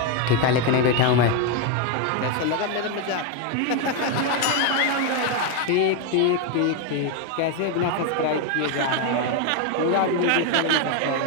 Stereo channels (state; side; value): different; both; correlation 0.01